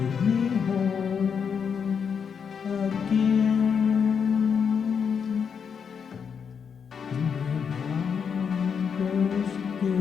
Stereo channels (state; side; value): quieter; right; 6.7 dB